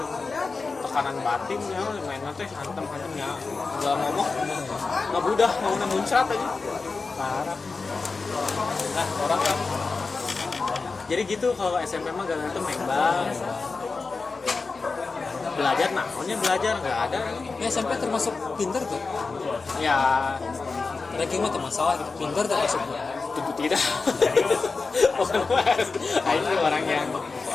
Tekanan batin ya mainnya teh hantem-hantemnya. Enggak ngomong. Enggak budah mau muncrat aja. Parah. Nah, orang kan. Jadi gitu kalau SMP mah gak tuh membang. belajar namanya belajar nggak ada Ya, SMP termasuk pinter tuh. ya Ranking mah tuh masalah gitu. Pinter termasuk. tentu tidak. Ini orang yang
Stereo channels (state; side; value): quieter; right; 4.2 dB